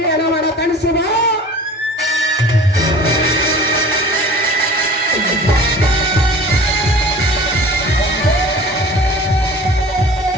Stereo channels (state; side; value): normal; both; correlation 0.43